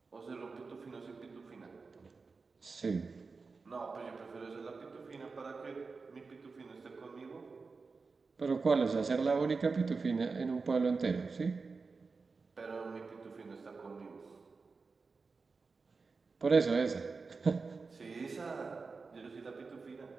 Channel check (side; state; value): left; quieter; 4.4 dB